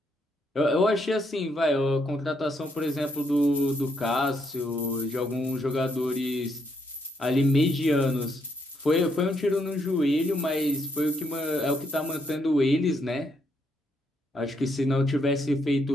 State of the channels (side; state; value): both; normal; correlation 0.73